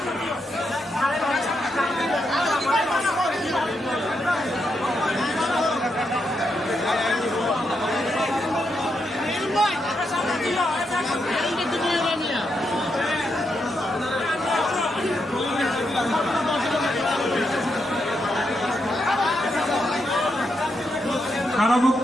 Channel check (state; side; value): normal; both; correlation 0.82